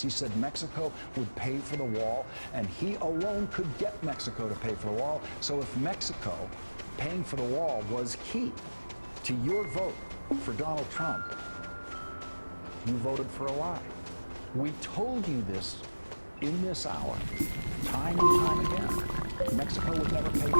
He said Mexico would pay for the wall, and he alone could get Mexico to pay for the wall. So if Mexico paying for the wall was key to your vote for Donald Trump, you voted for a lie. We told you this in this hour, time and time again. Mexico would never pay for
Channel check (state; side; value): inverted; both; correlation -1.00